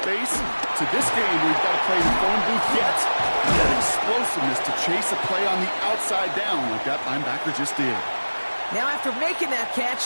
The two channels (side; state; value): both; inverted; correlation -1.00